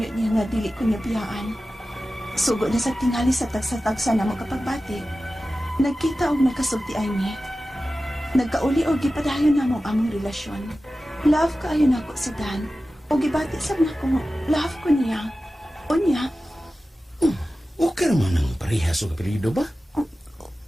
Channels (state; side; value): normal; both; correlation 0.95